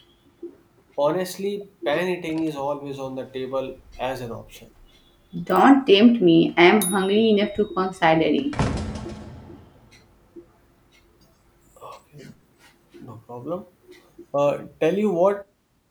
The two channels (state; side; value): identical; both; correlation 1.00